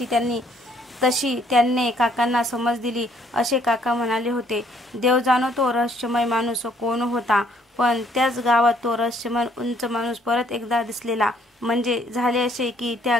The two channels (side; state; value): both; normal; correlation 0.65